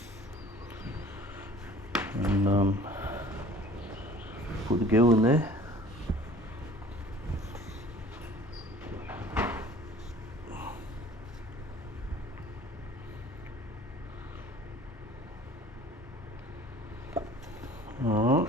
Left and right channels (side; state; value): both; normal; correlation 0.48